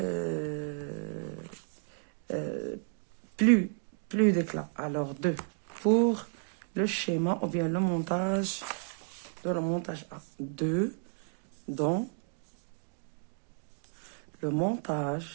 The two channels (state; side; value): silent; left; 56 dB below the other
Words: plus d'éclat. Alors, 2 pour le schéma ou bien le montage A. 2 dans le